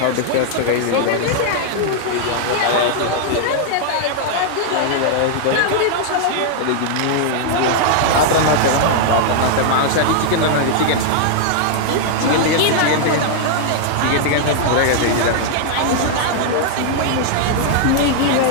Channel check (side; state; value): both; different; correlation -0.01